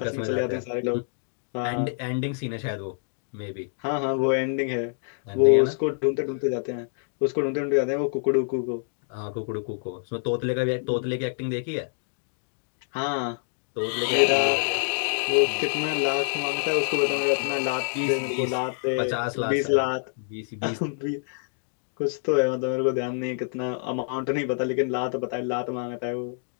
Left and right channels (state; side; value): silent; right; digital silence